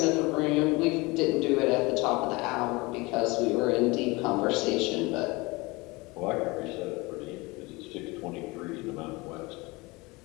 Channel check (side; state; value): right; quieter; 24.2 dB